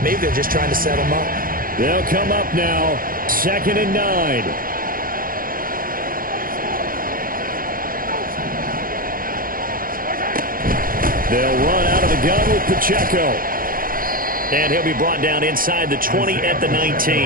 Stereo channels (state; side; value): late; left; 0.41 ms